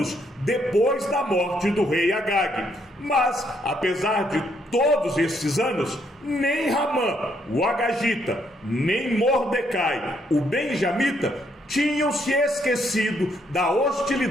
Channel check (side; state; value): both; normal; correlation 0.72